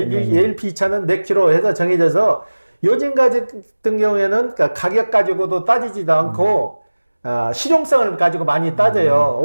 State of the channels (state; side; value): inverted; both; correlation -1.00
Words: ALP 차는 몇 킬로 해서 정해져서 요즘 같은 경우에는 가격 가지고도 따지지도 않고 실용성을 가지고 많이 따져요.